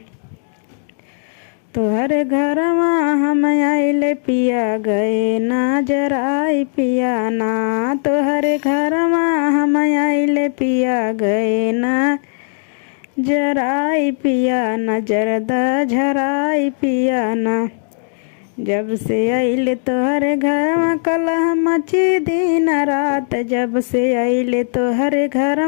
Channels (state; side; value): silent; right; digital silence